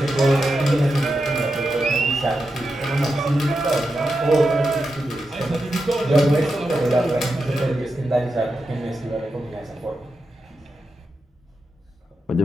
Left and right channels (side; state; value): both; normal; correlation 0.88